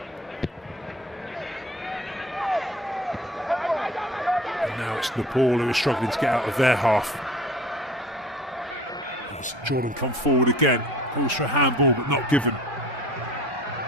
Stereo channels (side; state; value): both; normal; correlation 0.46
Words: And now it's Nepal who are struggling to get out of their half. As Jordan come forward again. Calls for a handball, but not given.